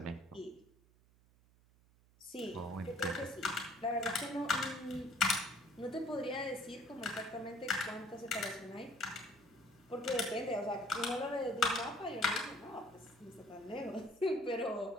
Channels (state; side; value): noise; right; hum, 29 dB below the sound